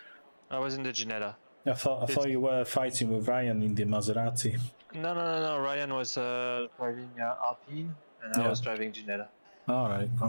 I was in the Ginetta. I thought you were fighting with Ryan in the Maserati. No. Ryan was driving Alpine, and I was driving Ginetta. All right.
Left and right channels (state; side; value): inverted; both; correlation -1.00